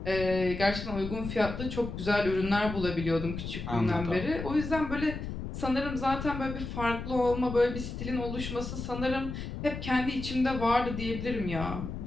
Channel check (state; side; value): noise; left; rumble, 7 dB below the sound